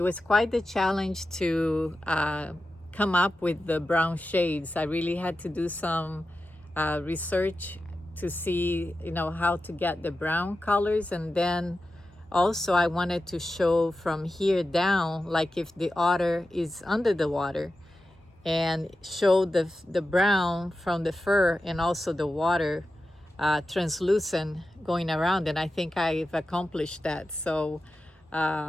was quite the challenge to come up with the brown shades. I really had to do some research to see, how to get the brown colors. And then also I wanted to show from here down, like if the otter is under the water, and show the brown from the fur and also the water translucent going around. And I think I've accomplished that. So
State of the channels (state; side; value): normal; both; correlation 0.92